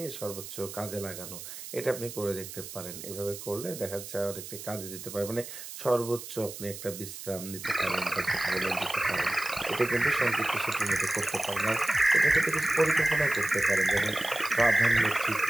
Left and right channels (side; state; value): right; noise; hiss, 11 dB below the sound